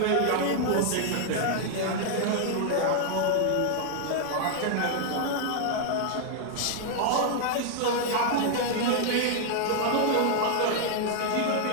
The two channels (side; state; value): both; different; correlation 0.00